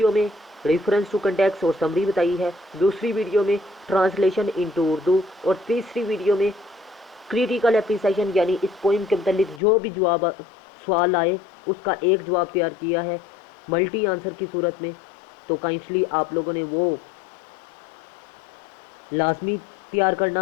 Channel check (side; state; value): right; drops out; at 9.6 s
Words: में रेफरेंस टू कंटेक्स्ट और समरी बताई है, दूसरी वीडियो में ट्रांसलेशन इनटू उर्दू और तीसरी वीडियो में क्रिटिकल एप्रिसिएशन, यानी इस पोइम के मतलब जो भी जवाब सवाल आए उसका एक जवाब तैयार किया है मल्टी आंसर की सूरत में। तो काइंडली आप लोगों ने वो लाजमी तैयार